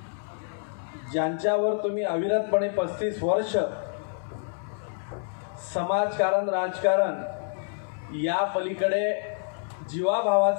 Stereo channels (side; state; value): right; silent; 60 dB below the other